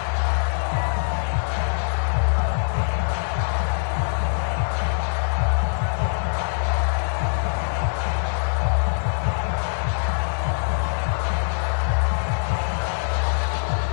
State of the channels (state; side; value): silent; right; digital silence